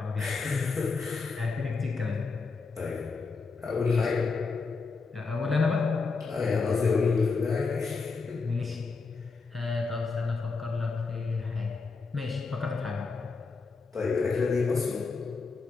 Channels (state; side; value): quieter; right; 4.4 dB